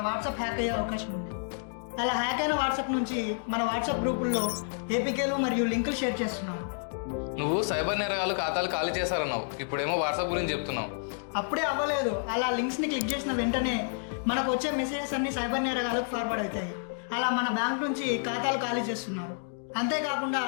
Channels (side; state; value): right; silent; digital silence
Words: వాట్సాప్ హ్యాక్ అయ్యే అవకాశం ఉంది. అలా హ్యాక్ అయిన వాట్సాప్ నుంచి మన వాట్సాప్ గ్రూపుల్లో ఏపీకేలు మరియు లింకులు షేర్ చేస్తున్నారు. నువ్వు సైబర్ నేరగాళ్ళు ఖాతాలు ఖాళీ చేశారన్నావు, ఇప్పుడేమో వాట్సాప్ గురించి చెప్తున్నావు. అప్పుడే అవ్వలేదు, అలా లింక్స్ని క్లిక్ చేసిన వెంటనే మనకు వచ్చే మెసేజెస్ అన్ని సైబర్ నేరగాలకు ఫార్వర్డ్ అవుతాయి. అలా మన బ్యాంక్ నుంచి ఖాతాలు ఖాళీ చేస్తున్నారు. అంతేకాకుండా